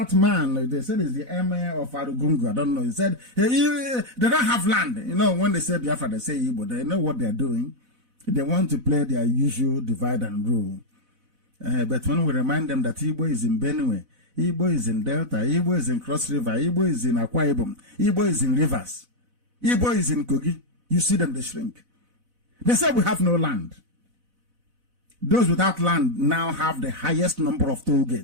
man? They said he's the emir of Arugungu. I don't know. He said they don't have land. You know, when they say Biafra, they say Igbo. They know what they're doing. They want to play their usual divide and rule. But when we remind them that Igbo is in Benue, Igbo is in Delta, Igbo is in Cross River, Igbo is in Akwa Ibom, Igbo is in Rivers, Igbo is in Kogi, you see them, they shrink. They say we have no land. Those without land now have the highest number of toll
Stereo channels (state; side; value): late; left; 4.0 ms